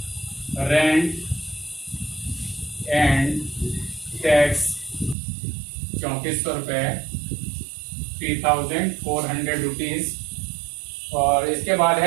रेंट एंड टैक्स 3400 रुपए, 3,400 रुपीज। और इसके बाद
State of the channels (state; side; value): drops out; left; at 5.2 s